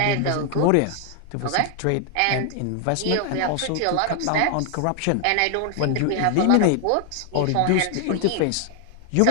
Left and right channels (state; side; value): different; both; correlation 0.00